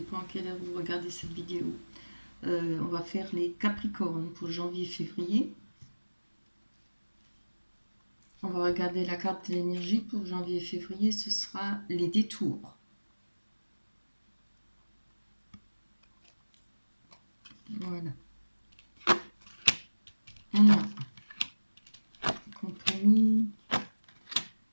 à quelle heure vous regardez cette vidéo. On va faire les Capricornes pour janvier-février. On va regarder la carte de l'énergie pour janvier-février, ce sera les détours. Voilà. On a le compromis,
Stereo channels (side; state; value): both; inverted; correlation -1.00